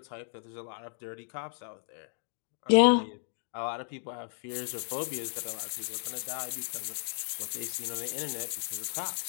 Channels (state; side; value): silent; right; digital silence